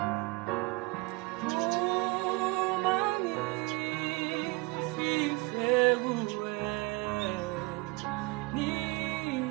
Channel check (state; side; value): quieter; left; 24.9 dB